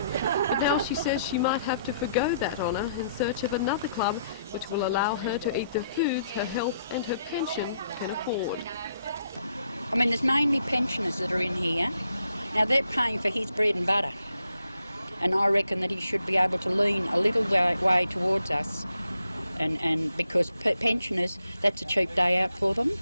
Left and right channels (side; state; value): both; inverted; correlation -0.75